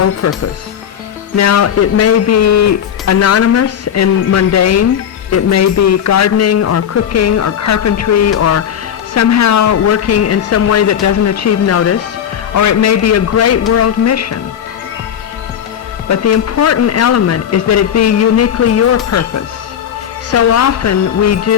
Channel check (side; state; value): right; quieter; 9.1 dB